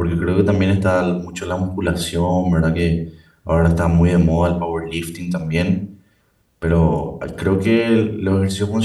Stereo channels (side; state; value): both; identical; correlation 1.00